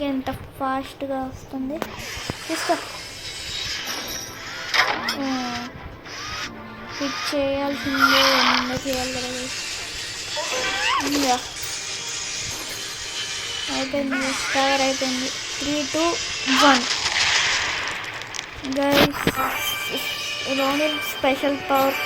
ఎంత ఫాస్ట్గా వస్తుంది. తీసుకో. హిట్ చేయాల్సిందే, చేయాలి కదా. ఇంకా అయిపోయింది, కవర్ అయిపోయింది. 3, 2, 1 guys. Ronin special power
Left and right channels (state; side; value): identical; both; correlation 1.00